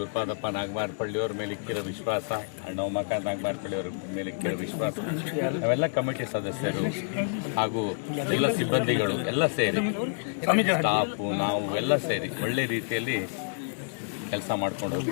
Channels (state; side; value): silent; right; digital silence